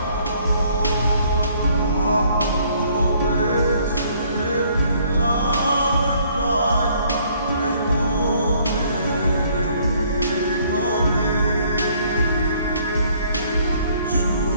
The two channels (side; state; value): both; inverted; correlation -0.62